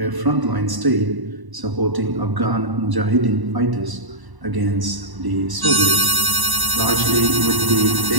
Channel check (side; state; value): left; late; 1.0 ms